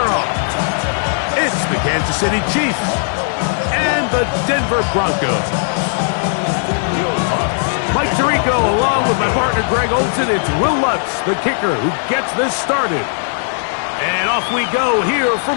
off. It's the Kansas City Chiefs and the Denver Broncos. Mike Tirico along with my partner Greg Olson. It's Will Lutz, the kicker, who gets this started. And off we go here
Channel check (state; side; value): silent; right; digital silence